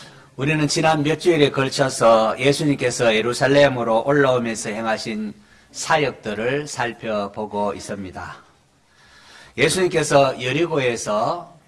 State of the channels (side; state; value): both; identical; correlation 1.00